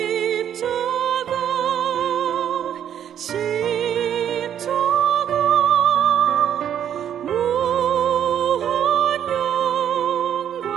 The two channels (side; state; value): left; quieter; 9.6 dB